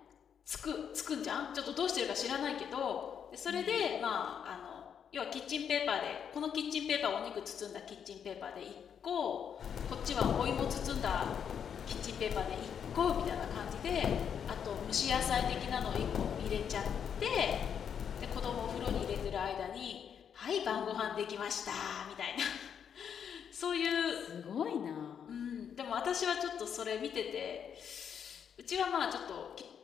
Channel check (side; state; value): right; quieter; 7.9 dB